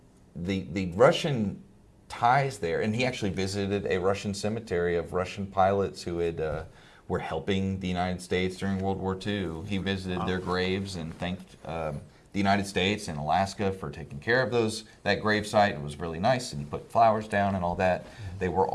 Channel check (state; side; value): identical; both; correlation 1.00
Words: Russian ties there, and he actually visited a Russian cemetery of Russian pilots who were helping the United States during World War II. He visited their graves and thanked the United States and Alaska for taking care of that gravesite. It was really nice, and he put flowers down and all that. They were